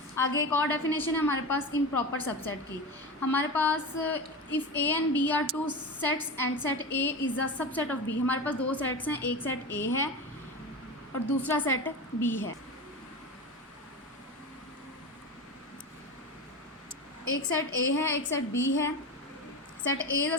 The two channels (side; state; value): both; normal; correlation 0.25